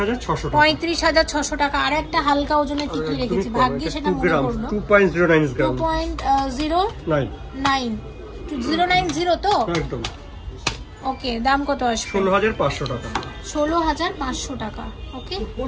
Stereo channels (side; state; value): both; identical; correlation 1.00